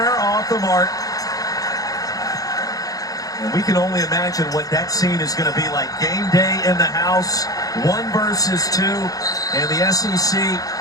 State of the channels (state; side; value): late; right; 0.17 ms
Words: off the mark. And we can only imagine what that scene is going to be like. Game day in the house, 1 versus 2, and the SEC